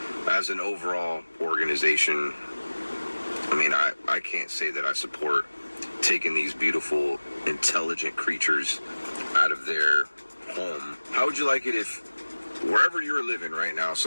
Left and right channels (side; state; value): both; inverted; correlation -1.00